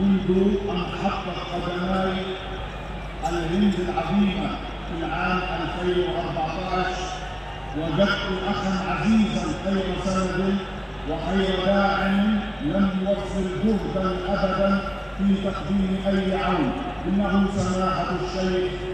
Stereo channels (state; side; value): identical; both; correlation 1.00